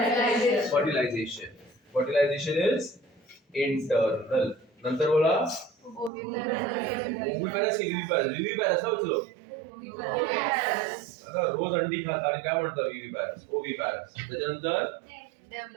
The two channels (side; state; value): left; drops out; at 6.1 s